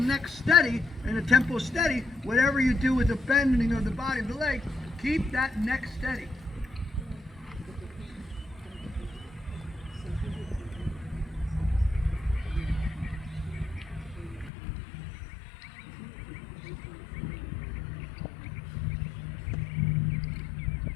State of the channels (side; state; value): right; drops out; at 14.5 s